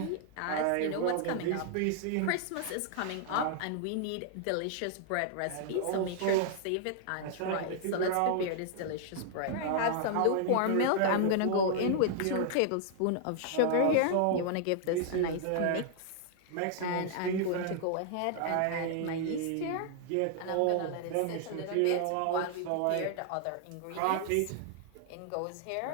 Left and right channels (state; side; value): different; both; correlation 0.00